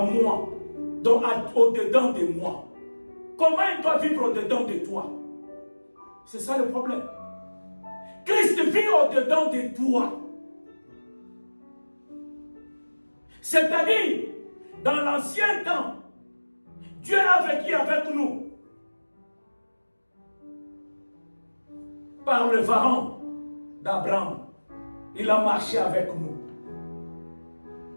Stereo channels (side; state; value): both; inverted; correlation -1.00